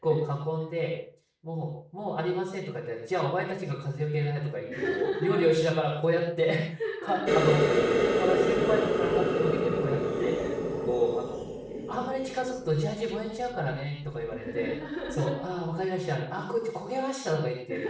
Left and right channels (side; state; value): both; identical; correlation 1.00